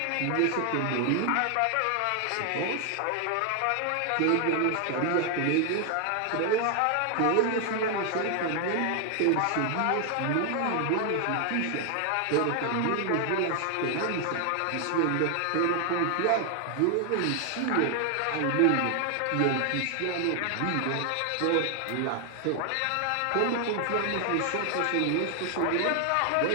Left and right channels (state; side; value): different; both; correlation 0.00